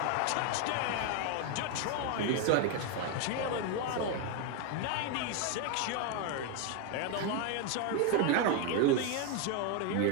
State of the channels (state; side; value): different; both; correlation 0.01